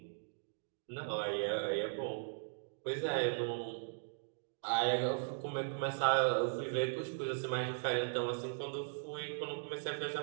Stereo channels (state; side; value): silent; left; digital silence